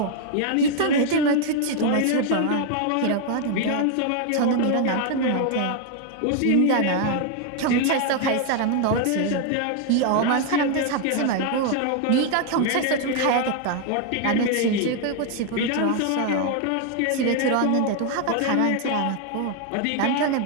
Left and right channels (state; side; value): different; both; correlation 0.00